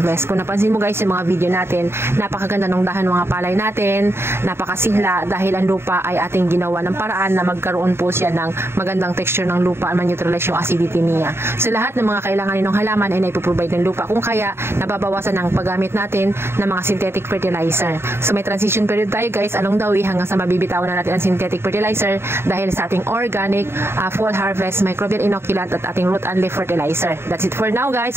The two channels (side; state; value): left; late; 0.12 ms